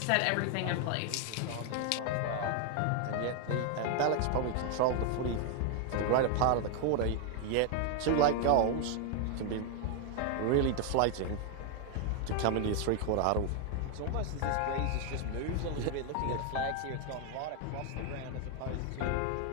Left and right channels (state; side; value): different; both; correlation 0.00